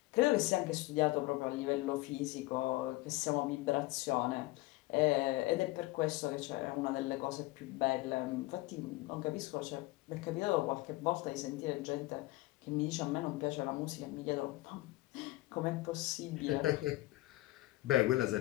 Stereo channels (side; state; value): right; quieter; 19.5 dB